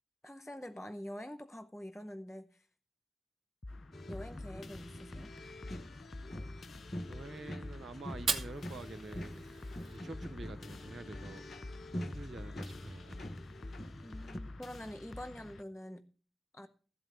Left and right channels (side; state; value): both; normal; correlation 0.89